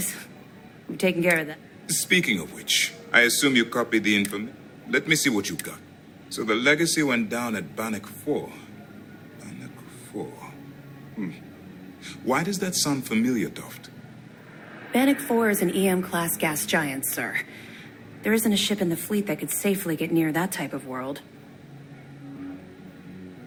We've taken care of that. Speaking of which, I assume you copied the information. Let me see what you got. So the legacy went down at Bannock 4. Bannock 4. Why does that sound familiar, Toft? Bannock 4 is an EM-class gas giant, sir. There isn't a ship in the fleet that could safely get near that type of world.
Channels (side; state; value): both; identical; correlation 1.00